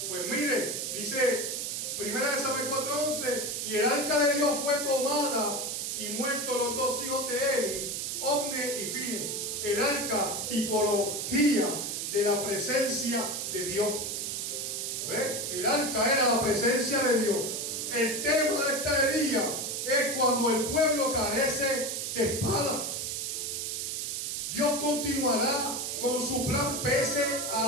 Pues mire, dice 1 Samuel 4:11, y el arca de Dios fue tomada y muertos los dos hijos de Eli, Ofni y Fine. El arca, tipología de la presencia de Dios. ¿Ve? El arca era la presencia de Dios. El tema de este día es cuando el pueblo carece de espada. Dios continuará con su plan pese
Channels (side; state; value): right; noise; hiss, 3 dB below the sound